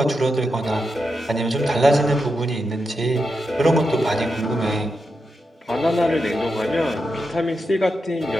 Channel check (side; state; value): both; normal; correlation 0.87